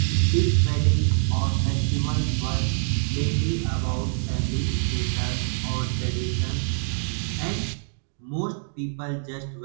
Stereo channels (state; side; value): silent; left; 62 dB below the other